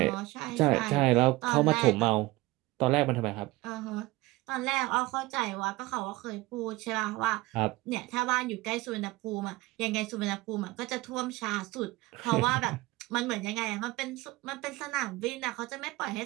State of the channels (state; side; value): quieter; left; 20.5 dB